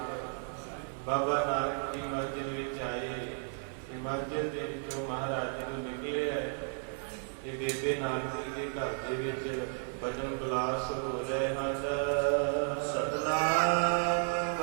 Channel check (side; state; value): left; silent; 55 dB below the other